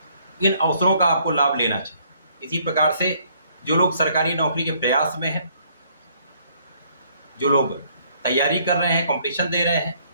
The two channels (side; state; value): both; inverted; correlation -0.65